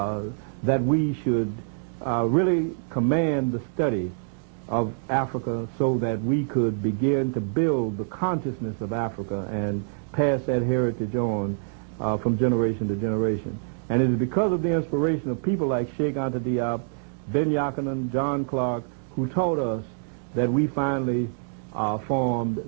that we should really command the study of Africa so that we could begin to build the consciousness of Africa and pass that heritage on from generation to generation. And it is because of the inspiration of people like Cheikh Anta Diop, Ben Yakinen, John Clark, who taught us that we finally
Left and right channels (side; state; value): left; silent; digital silence